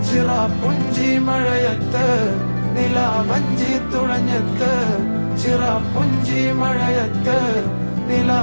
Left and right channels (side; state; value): both; inverted; correlation -1.00